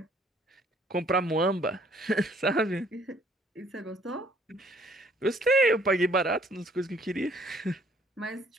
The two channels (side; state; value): both; normal; correlation 0.61